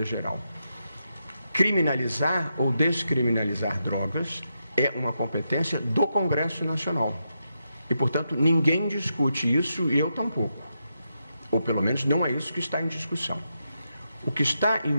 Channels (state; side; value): inverted; both; correlation -0.84